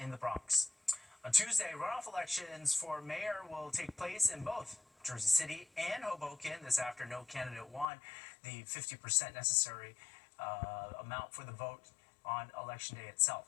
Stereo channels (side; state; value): right; drops out; at 7.9 s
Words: the Bronx. On Tuesday, runoff elections for mayor will take place in both Jersey City and Hoboken. This after no candidate won the 50% necessary amount for the vote on election day